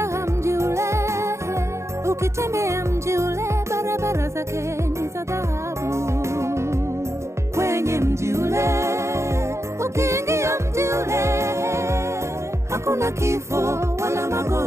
mji ule ukitembea, mji ule barabara zake ni za dhahabu. Kwenye mji ule ukiingia, mji ule hakuna kifo wala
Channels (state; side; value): late; left; 0.14 ms